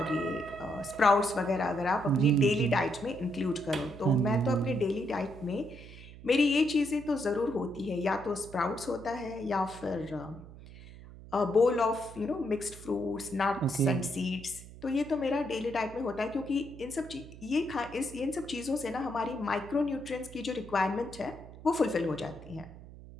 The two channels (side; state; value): right; noise; hum, 17 dB below the sound